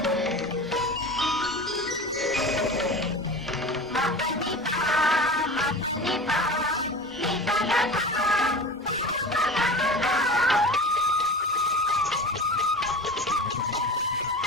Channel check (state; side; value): normal; both; correlation 0.33